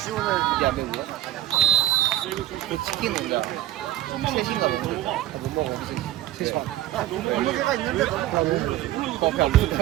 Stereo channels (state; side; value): quieter; left; 14.1 dB